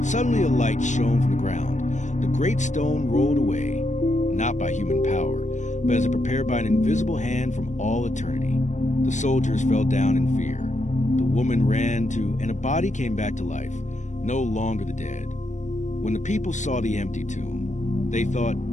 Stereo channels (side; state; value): right; late; 0.35 ms